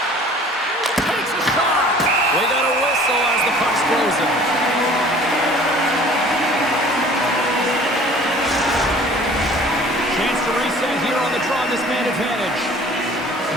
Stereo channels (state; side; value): normal; both; correlation 0.49